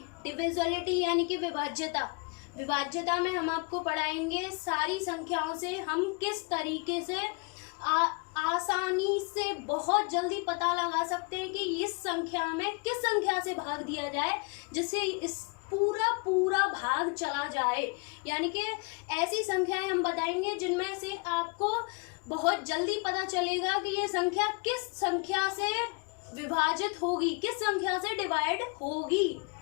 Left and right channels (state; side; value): quieter; right; 32.2 dB